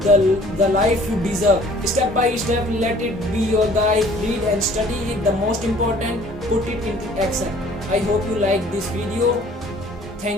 the life you deserve. Step by step, let it be your guide. Read and study it. The most important, put it into action. I hope you like this video.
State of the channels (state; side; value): normal; both; correlation 0.53